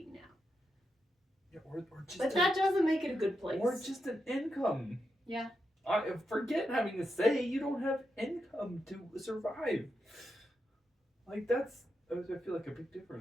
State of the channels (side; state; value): both; normal; correlation 0.86